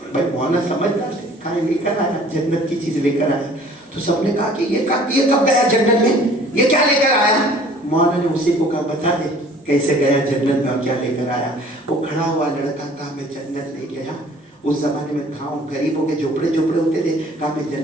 بھائی مولانا سمجھدار تھے، کہا لے کر آیا، جنت کی چیز لے کر آیا۔ تو سب نے کہا کہ یہ کب گیا جنت میں، یہ کیا لے کر آیا؟ مولانا نے اسی کو کہا بتا دے کیسے گیا جنت میں اور کیا لے کر آیا۔ وہ کھڑا ہوا لڑکا کہا میں جنت نہیں گیا، اس زمانے میں گاؤں غریبوں کے جھوپڑے ہوتے تھے، کہا میں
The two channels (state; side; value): normal; both; correlation 0.52